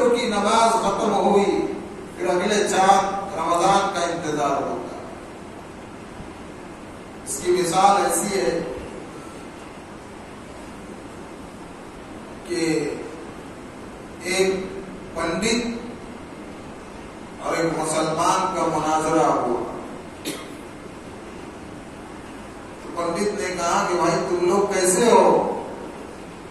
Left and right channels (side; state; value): both; identical; correlation 1.00